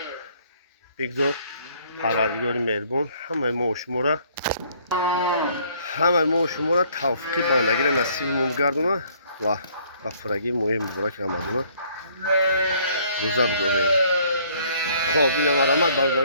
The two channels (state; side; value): inverted; both; correlation -0.61